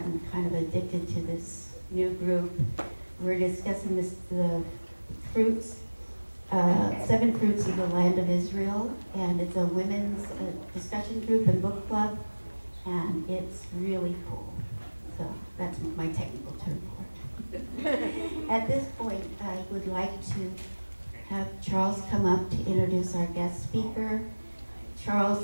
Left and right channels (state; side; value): inverted; both; correlation -1.00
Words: kind of addicted to this new group. We're discussing the fruits, 7 fruits of the land of Israel, and it's a women's discussion group and book club, and it's really cool. So that's my technical term for it. At this point, I would like to have Charles come up to introduce our guest speaker.